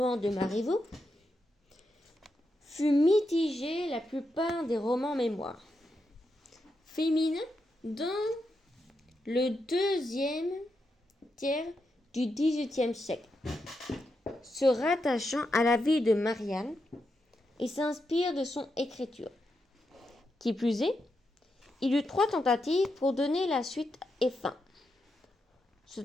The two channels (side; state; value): both; normal; correlation 0.85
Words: de Marivaux, fut mitigé la plupart des romans mémoires féminins dans le deuxième tiers du XVIIIe siècle, se rattachant à la vie de Marianne et s'inspire de son écriture. Qui plus est, il y eut 3 tentatives pour donner la suite et fin.